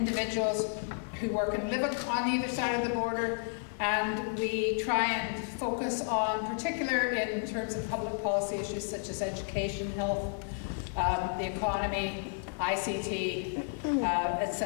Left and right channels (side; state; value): right; silent; 56 dB below the other